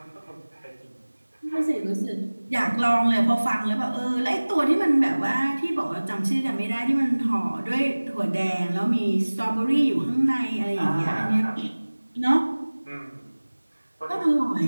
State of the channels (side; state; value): both; inverted; correlation -1.00